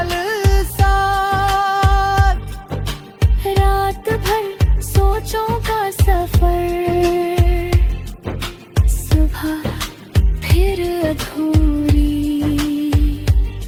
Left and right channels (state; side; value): identical; both; correlation 1.00